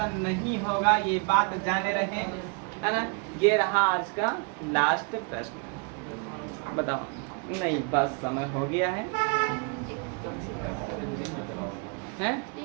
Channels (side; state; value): left; quieter; 35.1 dB